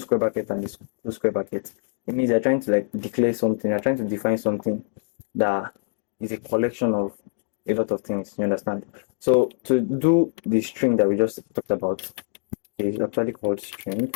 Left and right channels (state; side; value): silent; right; digital silence